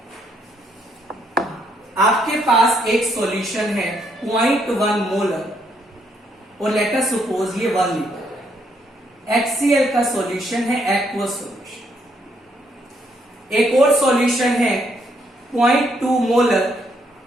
आपके पास एक सॉल्यूशन है 0.1 मोलर और लेट अस सपोज ये 1 लीटर। HCl का सॉल्यूशन है एक्वस सॉल्यूशन। एक और सॉल्यूशन है 0.2 मोलर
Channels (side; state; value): both; normal; correlation 0.73